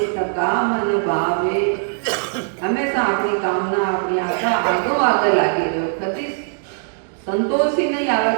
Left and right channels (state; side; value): silent; left; digital silence